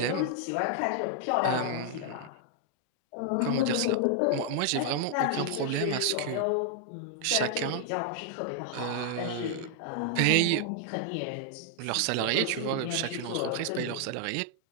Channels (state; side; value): different; both; correlation 0.00